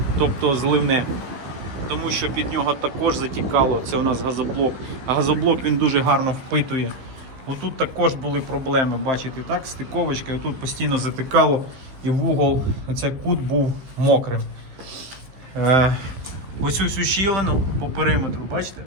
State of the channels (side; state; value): left; late; 15 ms